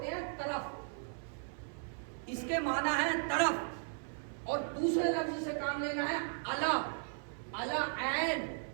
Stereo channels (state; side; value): silent; left; 54 dB below the other